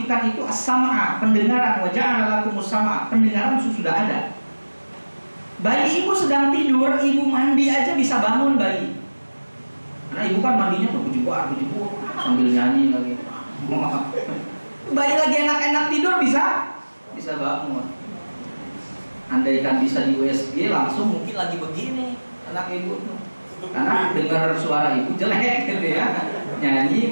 itu as-sam'a, pendengaran. Wa ja'ala lakumus sam'a, pendengaran sudah ada. Bayi ibu sedang tidur, ibu mandi aja bisa bangun bayi. Karena ibu kan mandinya tuh bujibuk sambil nyanyi lagi. Bayi lagi enak-enak tidur bisa bangun. Andaikan bisa di USG langsung mungkin lagi begini anak ibu tuh. Karena dengar suara ibu jelek gitu ya. Nyanyi,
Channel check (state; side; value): inverted; both; correlation -1.00